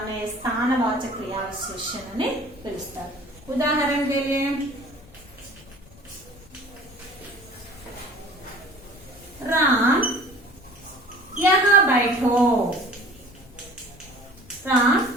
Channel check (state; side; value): noise; left; rumble, 23 dB below the sound